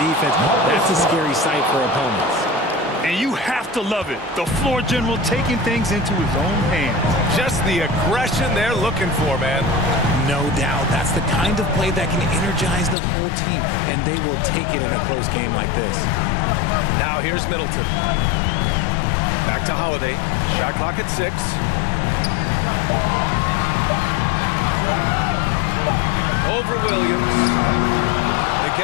That's a scary sight for opponents. And you have to love it. The floor general taking things into his own hands. Just the aggression they're looking for, man. No doubt. That's the kind of play that can energize the whole team, and they will take it in a close game like this. Now here's Middleton. Back to Holiday. Shot clock at 6. Over Williams. They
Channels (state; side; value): drops out; right; at 13.0 s